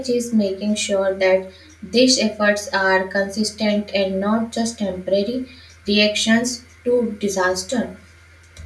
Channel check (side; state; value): both; identical; correlation 1.00